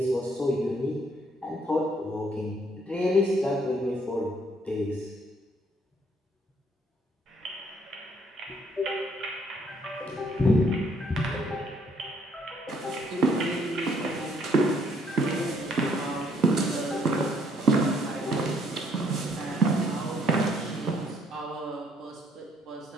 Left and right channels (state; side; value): normal; both; correlation 0.67